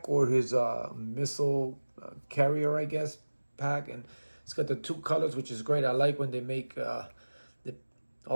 or his missile carrier, I guess, pack. And it's got the two colors, which is great. I like when they make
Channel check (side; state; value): both; inverted; correlation -1.00